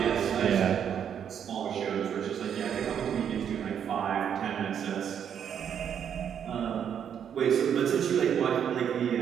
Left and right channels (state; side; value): quieter; left; 8.5 dB